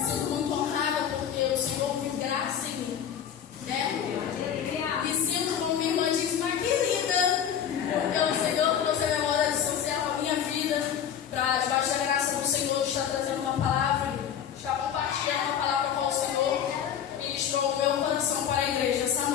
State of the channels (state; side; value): quieter; right; 8.9 dB